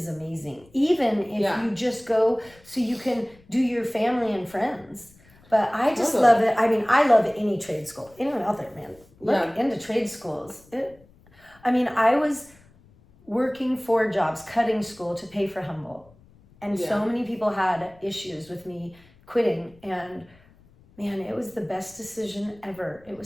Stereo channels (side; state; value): left; noise; rumble, 28 dB below the sound